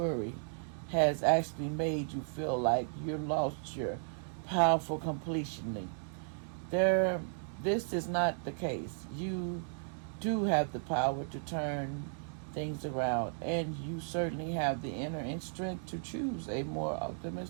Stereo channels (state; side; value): silent; left; digital silence